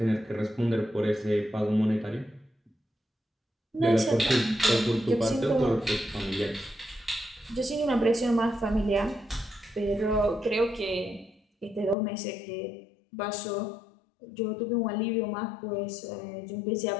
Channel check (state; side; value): drops out; right; at 12.0 s